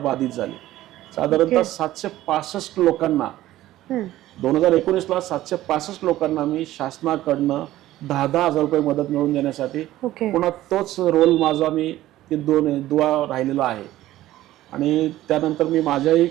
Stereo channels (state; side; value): quieter; left; 15.0 dB